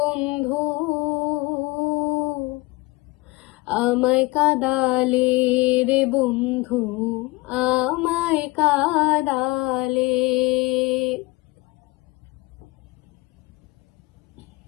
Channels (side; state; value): right; quieter; 22.9 dB